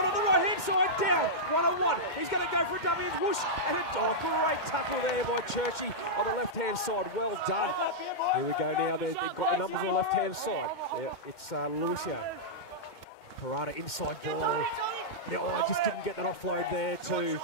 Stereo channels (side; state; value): right; late; 2.1 ms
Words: the right-hand side, down, 1-on-1. He's going to go for a dummy and whoosh, and a great tackle there by Churchie on the left-hand side. Well done. Here we go now. They've got the numbers on the left-hand side. It's Lucio. Parada inside ball. Yeah, I just didn't get that offload there to